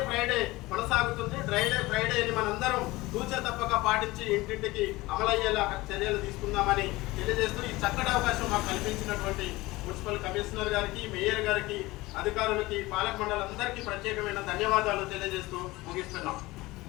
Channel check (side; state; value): right; quieter; 20.2 dB